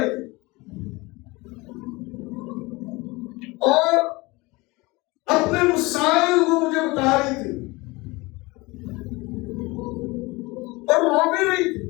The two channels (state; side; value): quieter; right; 23.5 dB